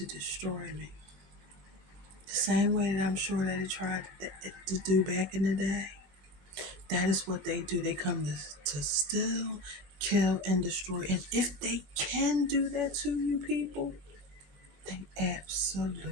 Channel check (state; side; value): late; left; 20 ms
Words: destroy me. The same way that I'm sure that it tried to do back in the day. That is what they do. They come to steal, kill, and destroy. And if they can do that to you people, they